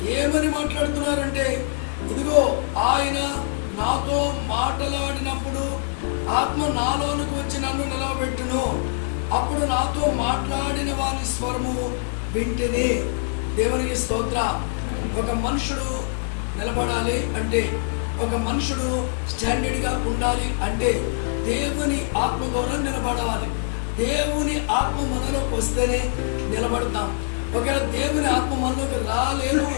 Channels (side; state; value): right; silent; 63 dB below the other